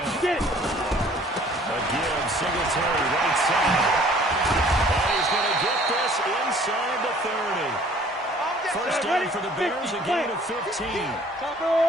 Get it. Again, Singletary right side. And he's going to get this inside the 30. First down for the Bears, a gain of 15. Still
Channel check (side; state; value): both; normal; correlation 0.54